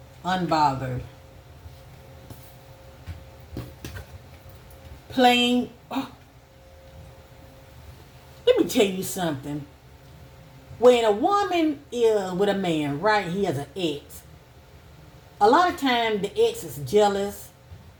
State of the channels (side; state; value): both; identical; correlation 1.00